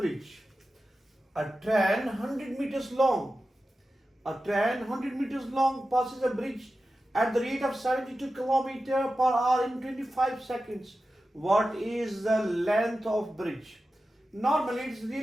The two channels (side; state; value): both; normal; correlation 0.93